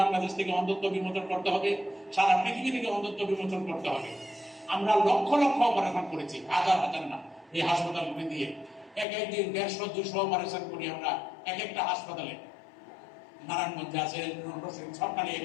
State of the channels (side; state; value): right; drops out; at 9.1 s